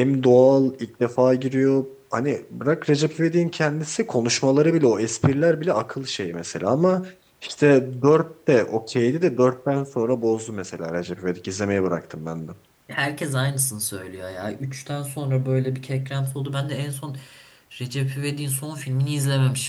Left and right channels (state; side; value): identical; both; correlation 1.00